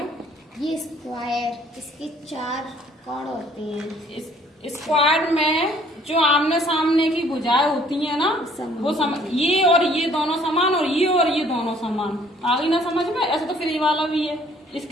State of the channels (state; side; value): normal; both; correlation 0.59